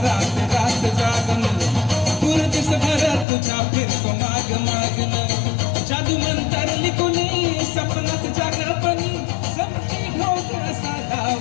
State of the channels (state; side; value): drops out; right; at 3.2 s